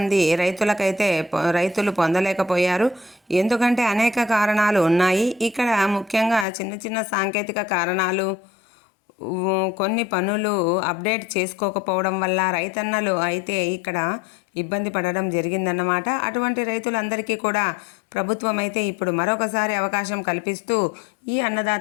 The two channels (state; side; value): drops out; right; at 6.5 s